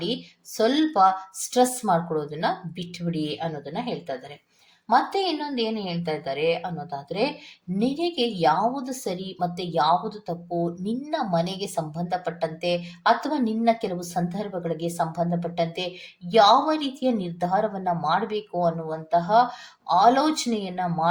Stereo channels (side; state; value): both; identical; correlation 1.00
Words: ಸ್ವಲ್ಪ ಸ್ಟ್ರೆಸ್ ಮಾಡ್ಕೊಳ್ಳೋದನ್ನ ಬಿಟ್ಬಿಡಿ ಅನ್ನೋದನ್ನ ಹೇಳ್ತಾ ಇದ್ದಾರೆ. ಮತ್ತೆ ಇನ್ನೊಂದು ಏನು ಹೇಳ್ತಾ ಇದ್ದಾರೆ ಅನ್ನೋದಾದ್ರೆ, ನಿನಗೆ ಯಾವುದು ಸರಿ ಮತ್ತೆ ಯಾವುದು ತಪ್ಪು, ನಿನ್ನ ಮನೆಗೆ ಸಂಬಂಧಪಟ್ಟಂತೆ ಅಥವಾ ನಿನ್ನ ಕೆಲವು ಸಂದರ್ಭಗಳಿಗೆ ಸಂಬಂಧಪಟ್ಟಂತೆ ಯಾವ ರೀತಿಯ ನಿರ್ಧಾರವನ್ನ ಮಾಡಬೇಕು ಅನ್ನುವಂತಹ ಆಲೋಚನೆಯನ್ನ